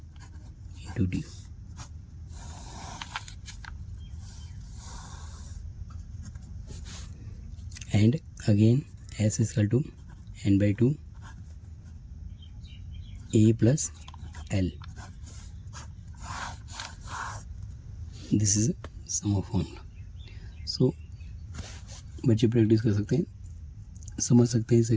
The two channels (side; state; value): both; identical; correlation 1.00